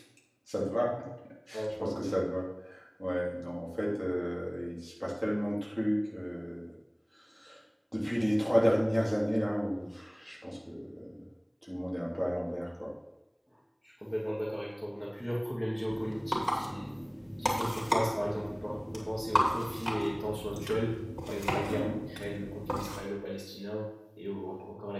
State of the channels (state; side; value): identical; both; correlation 1.00